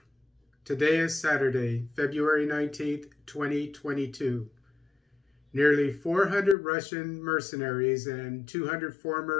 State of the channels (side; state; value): right; drops out; at 6.6 s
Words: Today is Saturday, February 19th, 2022. Nearly 400 Russian mercenaries and 200